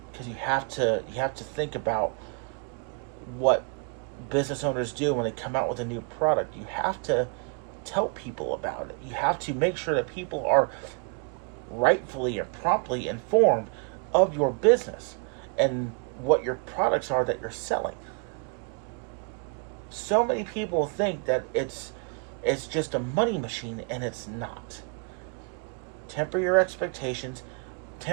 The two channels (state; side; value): quieter; left; 35.9 dB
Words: Because you have to think about what business owners do when they come out with a new product. You have to tell people about it. You have to make sure that people are rightfully and promptly informed of your business and what your products are that you're selling. So many people think that it's just a money machine, and it's not. Temper your expectations,